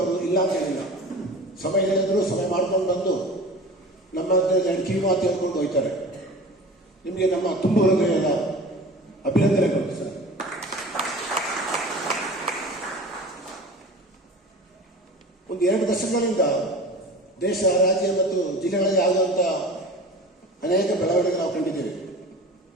ಅವರು ಇಲ್ಲ ಅಂತ ಹೇಳಿಲ್ಲ. ಸಮಯ ಹೇಳಿದ್ರು ಸಮಯ ಮಾಡ್ಕೊಂಡು ಬಂದು ನಮ್ಮ ಕಿವಿ ಮಾತು ಹೇಳ್ಕೊಂಡು ಹೋಗ್ತಾರೆ. ನಿಮಗೆ ನಮ್ಮ ತುಂಬ ಹೃದಯದ ಅಭಿನಂದನೆಗಳು ಸರ್. ಒಂದು 2 ದಶಕಗಳಿಂದ ದೇಶ, ರಾಜ್ಯ ಮತ್ತು ಜಿಲ್ಲೆಗಳಲ್ಲಿ ಆಗುವಂಥ ಅನೇಕ ಬೆಳವಣಿಗೆ ನಾವು ಕಂಡಿದ್ದೇವೆ.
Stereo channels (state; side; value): normal; both; correlation 0.38